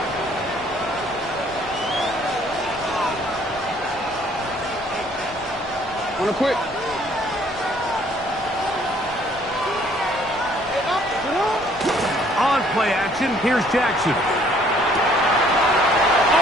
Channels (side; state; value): left; noise; rumble, 21 dB below the sound